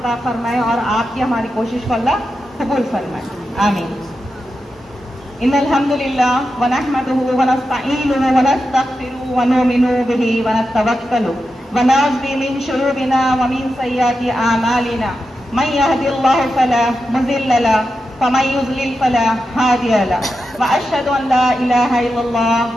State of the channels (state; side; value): normal; both; correlation 0.89